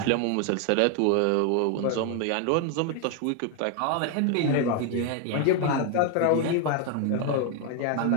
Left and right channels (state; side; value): different; both; correlation 0.01